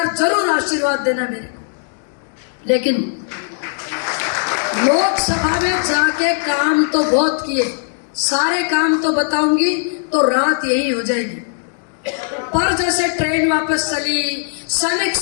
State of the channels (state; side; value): silent; right; 67 dB below the other